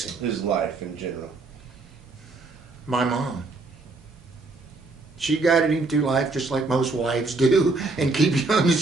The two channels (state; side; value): quieter; left; 3.5 dB